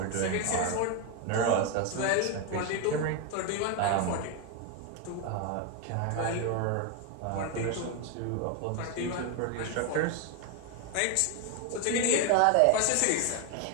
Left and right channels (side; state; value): both; different; correlation 0.01